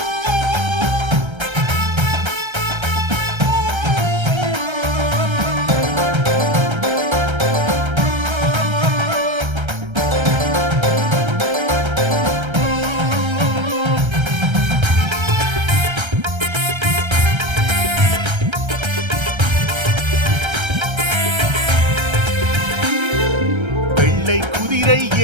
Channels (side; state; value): left; late; 1.3 ms